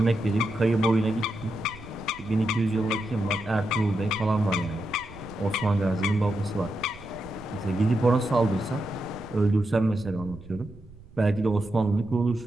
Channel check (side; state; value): right; noise; rumble, 20 dB below the sound